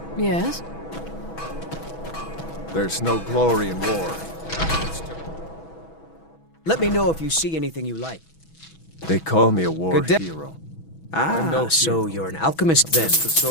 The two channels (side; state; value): right; late; 6.1 ms